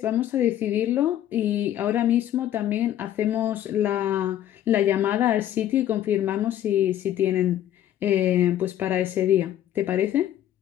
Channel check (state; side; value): quieter; right; 11.7 dB